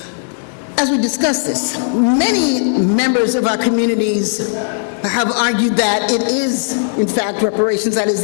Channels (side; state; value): right; silent; digital silence